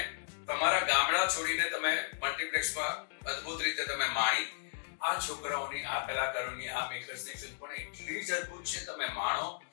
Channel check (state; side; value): silent; right; digital silence